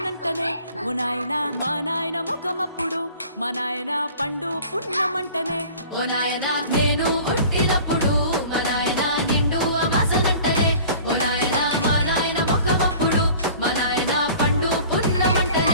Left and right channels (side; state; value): both; inverted; correlation -0.45